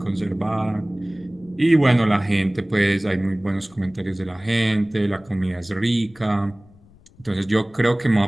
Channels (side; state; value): left; noise; rumble, 27 dB below the sound